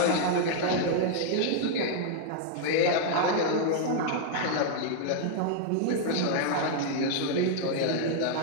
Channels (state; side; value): different; both; correlation 0.00